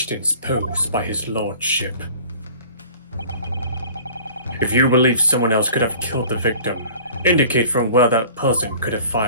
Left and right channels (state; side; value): inverted; both; correlation -0.46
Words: posed by his lordship. If you believe someone else could have killed the victim, indicate from where that person could have